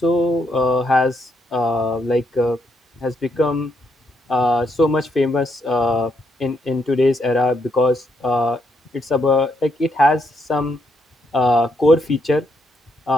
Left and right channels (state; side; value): normal; both; correlation 0.77